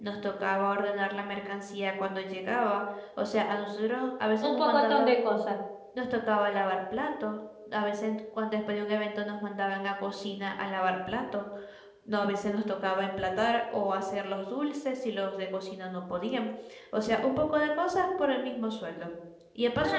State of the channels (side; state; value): both; identical; correlation 1.00